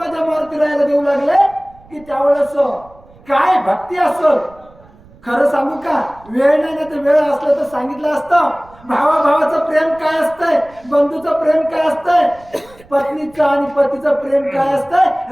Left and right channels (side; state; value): right; noise; rumble, 25 dB below the sound